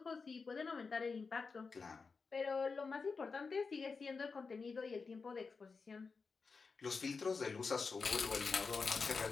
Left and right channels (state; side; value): quieter; right; 4.7 dB